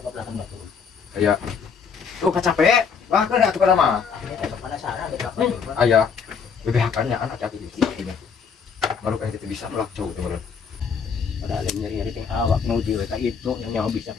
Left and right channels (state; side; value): quieter; right; 6.2 dB